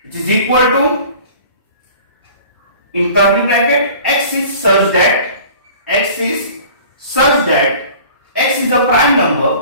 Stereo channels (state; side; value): inverted; both; correlation -0.46